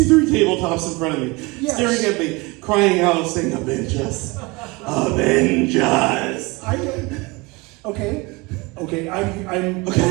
tabletops in front of me, staring at me, crying out, saying, "Avenge us, avenge us." Okay.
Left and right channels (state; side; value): quieter; left; 25.4 dB